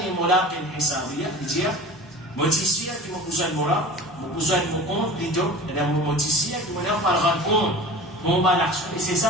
مُلَاقٍ حِسَابِيَهْ. Il dit, moi, je suis qui m'a besoin de moi, mon besoin de mon compte, plutôt, et là, moi, je suis qui m'a parlera de compte, mon bon action, et c'est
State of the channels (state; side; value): normal; both; correlation 0.38